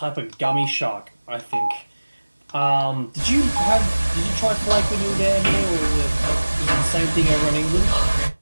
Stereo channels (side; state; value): both; inverted; correlation -1.00